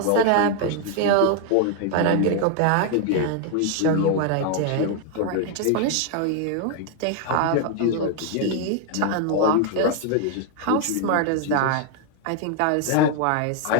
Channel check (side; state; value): both; different; correlation 0.00